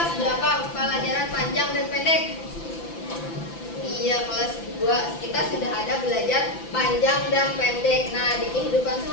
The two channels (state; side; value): late; right; 5.9 ms